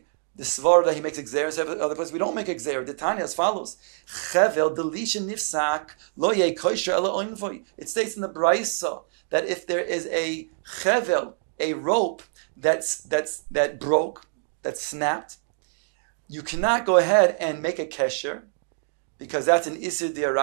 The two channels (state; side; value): silent; left; digital silence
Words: the svara that he makes exeris, other place we don't make exeris. The Tanya as follows: Chevel delisha nifsak lo yeh kosher ela oinvoy. It states in the Brisa that if there is a chevel, a rope that broke, that snapped, you cannot go ahead and make a kesher, because that's an isir